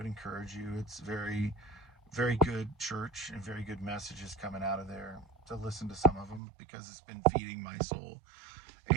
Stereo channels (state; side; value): drops out; left; at 6.4 s